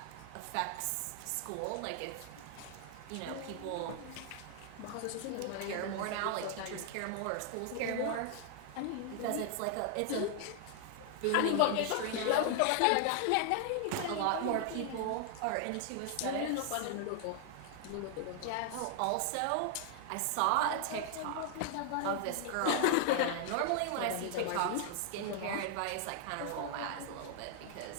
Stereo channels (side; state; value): both; different; correlation 0.00